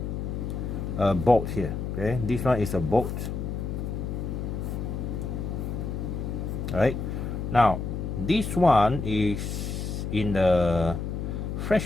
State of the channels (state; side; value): noise; left; hum, 4 dB below the sound